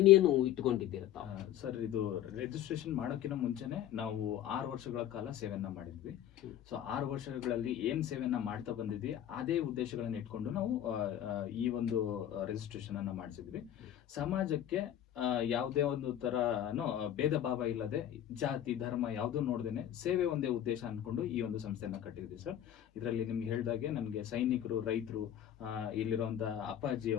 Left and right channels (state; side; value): quieter; right; 11.2 dB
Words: ಇಟ್ಕೊಂಡಿದ್ದೀರ ಸರ್? ಇದು ರಿಜಿಸ್ಟ್ರೇಷನ್ ಮಾಡೋಕ್ಕಿಂತ ಮುಂಚೆನೆ ನಾವು 6 ವರ್ಷಗಳ ಕಾಲ ಸೇವೆಯನ್ನ ಮಾಡಿದ್ವಿ. ಸೊ 6 ವರ್ಷಗಳಲ್ಲಿ ಏನ್ ಸೇವೆಯನ್ನ ಮಾಡ್ತಾ ಬಂದಿದ್ವಿ ಅದೇ ಉದ್ದೇಶಗಳನ್ನ ಇಟ್ಕೊಂಡು ನಾವು ಈ ಒಂದು ರಿಜಿಸ್ಟ್ರೇಷನ್ ಅನ್ನ ಮಾಡಿಸಿದ್ವಿ. ಸಮಾಜಕ್ಕೆ ಯಾವುದೇ ಒಂದು ತರ ಭೇದ ಭಾವ ಇಲ್ಲದೆ, ಜಾತಿ ಧರ್ಮ ಯಾವುದೂ ನೋಡ್ದೇನೆ ಸೇವೆ ಒಂದೇ ಉದ್ದೇಶ ಅನ್ಕೊಂಡು ಈ ಒಂದು ಸಂಸ್ಥೆಯನ್ನ ಕಟ್ಟಿದ್ವಿ ಸರ್. ಇದರಲ್ಲಿ ನಿಮ್ಗೆ ಹೇಳ್ದಾಗೆ ನನಗೆ ಸೈನಿಕರು, ರೈತರು, ಇಲ್ಲಿರುವಂತ ಅಪ್ಪಾಜಿ